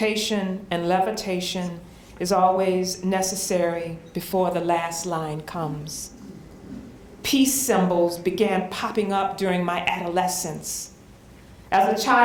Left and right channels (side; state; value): both; identical; correlation 1.00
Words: and levitation is always necessary before the last line comes. Peace symbols began popping up during my adolescence. As a